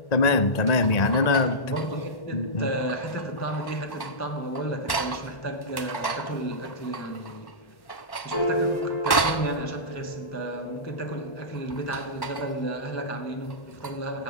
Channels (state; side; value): late; right; 1.1 ms